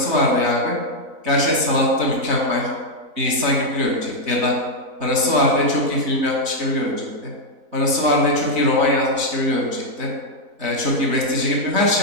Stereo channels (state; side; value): late; left; 4.0 ms